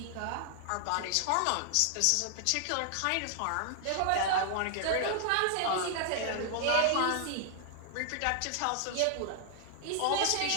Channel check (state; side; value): different; both; correlation 0.00